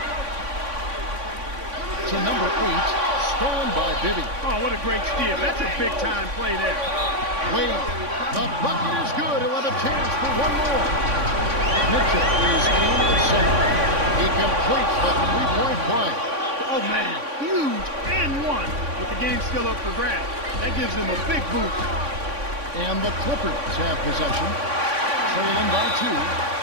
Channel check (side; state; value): left; late; 3.5 ms